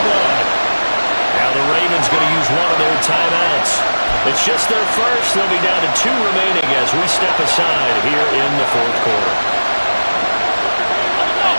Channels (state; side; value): inverted; both; correlation -1.00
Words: line. Now the Ravens going to use one of their timeouts. It's just their first. They'll be down to 2 remaining as we step aside here in the fourth quarter.